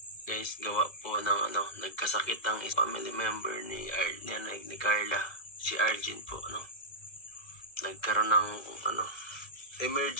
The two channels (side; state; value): right; late; 2.1 ms